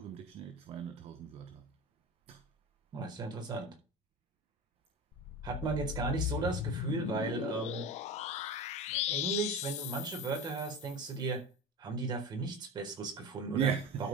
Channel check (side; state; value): both; normal; correlation 0.27